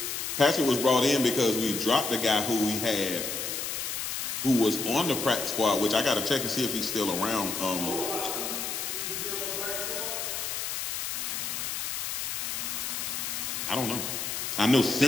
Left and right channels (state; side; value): noise; left; hiss, 3 dB below the sound